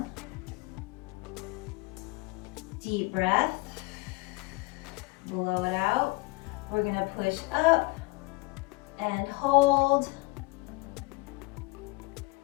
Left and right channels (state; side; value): quieter; right; 24.8 dB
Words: Deep breath. Blow it out. We're gonna push up and hold.